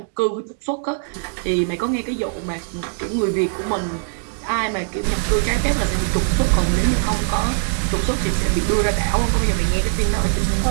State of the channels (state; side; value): silent; left; digital silence